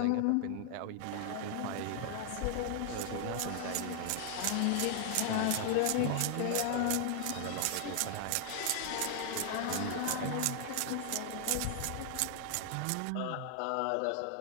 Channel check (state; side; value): different; both; correlation 0.00